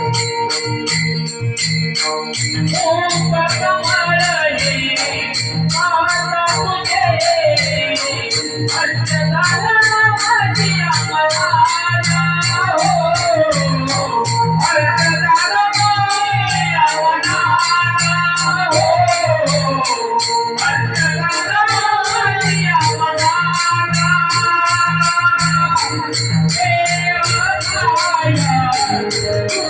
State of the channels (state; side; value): identical; both; correlation 1.00